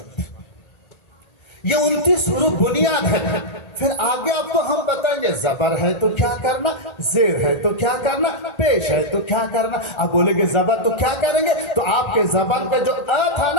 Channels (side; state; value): right; late; 1.3 ms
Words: ये 29 हुरूफ बुनियाद है। फिर आगे आपको हम बताएंगे जबर है तो क्या करना, जेर है तो क्या करना, पेश है तो क्या करना। अब बोलेंगे जबर तो क्या करेंगे, तो आपके जबान पे जो अ था